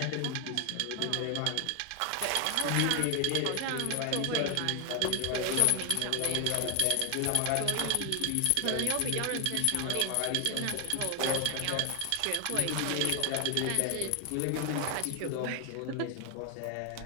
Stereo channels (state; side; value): different; both; correlation 0.00